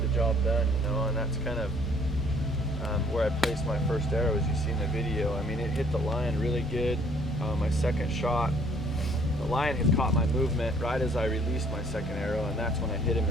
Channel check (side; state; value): both; normal; correlation 0.60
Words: the job done, you know, and that's kind of where I placed my first arrow, as you see in the video. I mean, it hit the lion really good. My second shot, the lion had caught my movement right as I released my second arrow, and that's when I hit him